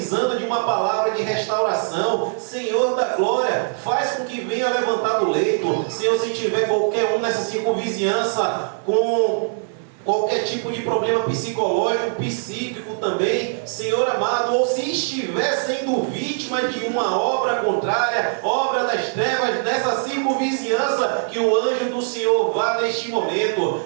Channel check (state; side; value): silent; left; 55 dB below the other